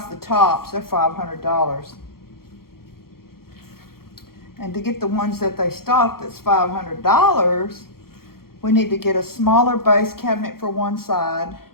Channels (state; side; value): late; right; 0.94 ms